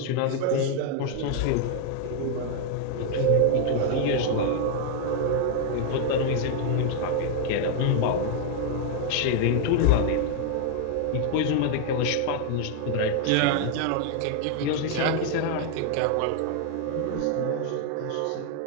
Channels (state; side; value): different; both; correlation 0.00